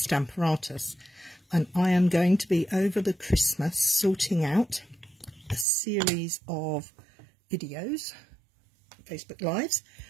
and I am going to be over the Christmas sorting out a series of videos, Facebook Lives,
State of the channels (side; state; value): left; drops out; at 5.7 s